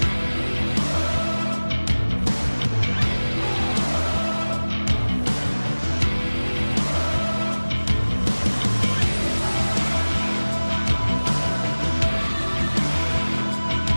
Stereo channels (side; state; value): both; inverted; correlation -1.00